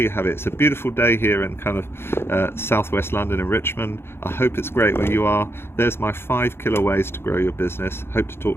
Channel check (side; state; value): right; late; 0.11 ms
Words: have it. It's a beautiful day here in kind of southwest London in Richmond. I hope it's great where you are. There's my 5 killer ways to grow your business. Hope to